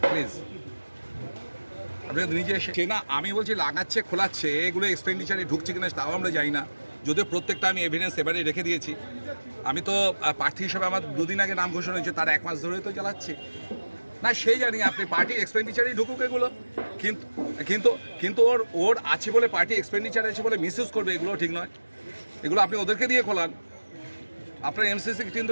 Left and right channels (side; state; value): both; inverted; correlation -1.00